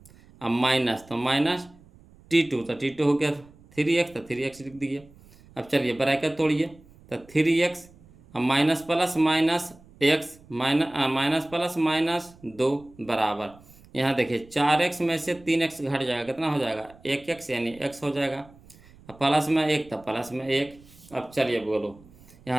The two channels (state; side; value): noise; right; rumble, 25 dB below the sound